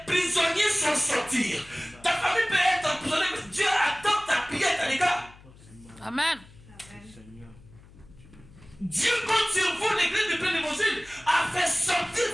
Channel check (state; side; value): noise; left; hum, 23 dB below the sound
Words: prisonniers sont sortis. Ta famille peut être emprisonnée, mais Dieu attend ta prière, les gars. Amen. Dieu compte sur vous, l'église de plein évangile, à faire sortir